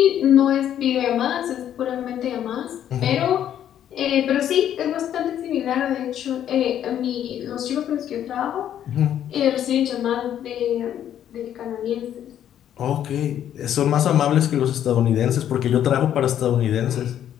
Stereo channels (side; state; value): right; quieter; 10.4 dB